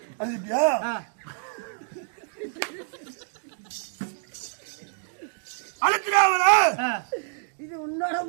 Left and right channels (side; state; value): left; silent; digital silence